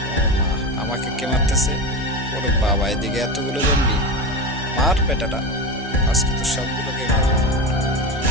মা, আমাকে কে মারতেছে? ওরে বাবা, এদিকে এতগুলো জম্বি। মার বেটাটা, আজকে তো সবগুলোকে মারবো।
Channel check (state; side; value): normal; both; correlation 0.22